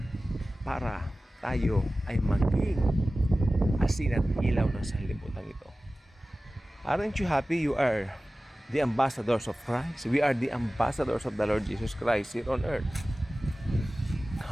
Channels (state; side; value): normal; both; correlation 0.96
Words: para tayo ay maging asin at ilaw ng sanlibutan ito. Aren't you happy you are the ambassadors of Christ? We are the ambassadors of the Lord Jesus Christ here on earth.